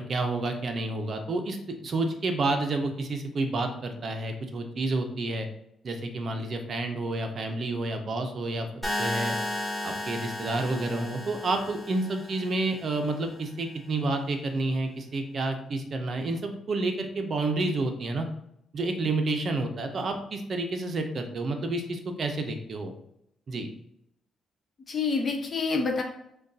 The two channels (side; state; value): both; normal; correlation 0.76